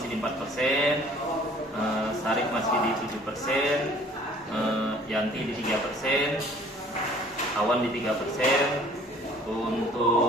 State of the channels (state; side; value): normal; both; correlation 0.53